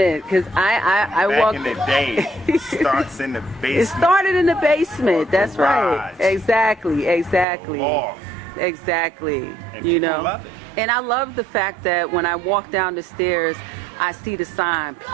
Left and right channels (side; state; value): left; drops out; at 7.5 s